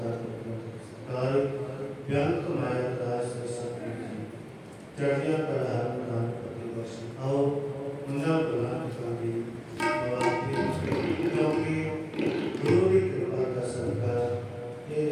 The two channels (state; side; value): identical; both; correlation 1.00